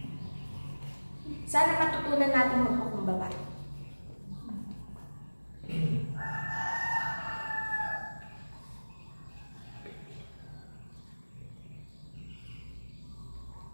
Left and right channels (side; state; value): both; inverted; correlation -1.00